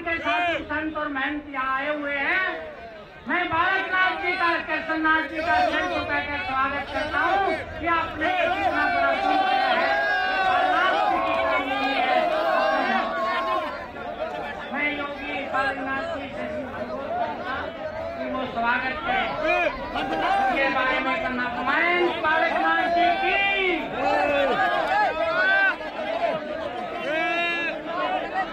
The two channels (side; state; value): both; identical; correlation 1.00